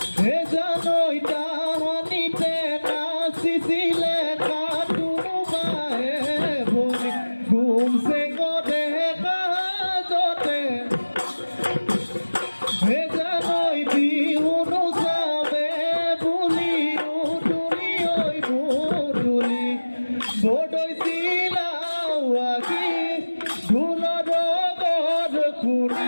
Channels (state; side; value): inverted; both; correlation -1.00